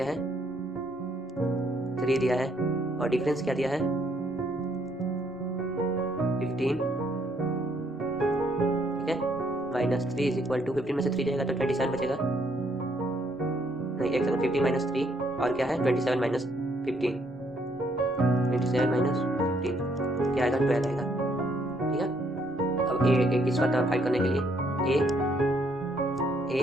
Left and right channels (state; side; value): normal; both; correlation 0.69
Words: है 3 दिया है और डिफरेंस क्या दिया है 15, ठीक है, माइनस 3 इज इक्वल टू 15 में से 3 जाएगा तो 27 बचेगा, नहीं एक सेकंड, 15 माइनस 3 और क्या है 27 माइनस 15, 27 माइनस 15 क्या आएगा 12 आएगा, ठीक है। अब A इसका टर्म फाइंड करने के लिए ए